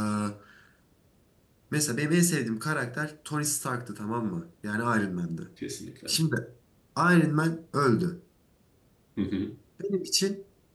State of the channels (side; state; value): both; identical; correlation 1.00